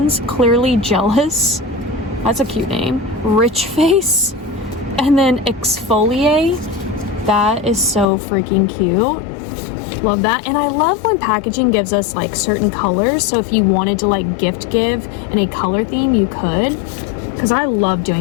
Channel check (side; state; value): right; drops out; at 8.1 s